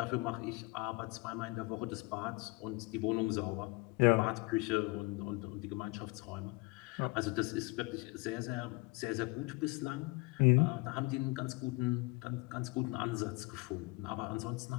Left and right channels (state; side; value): quieter; right; 25.4 dB